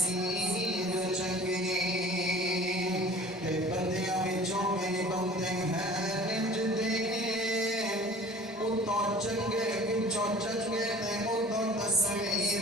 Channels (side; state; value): both; normal; correlation 0.46